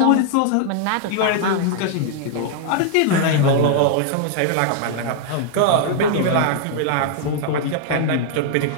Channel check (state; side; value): different; both; correlation -0.01